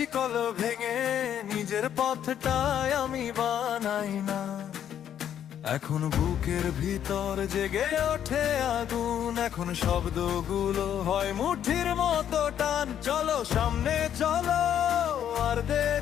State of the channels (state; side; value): quieter; right; 9.8 dB